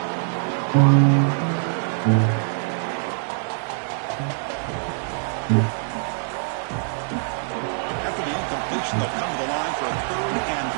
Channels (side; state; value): left; silent; 63 dB below the other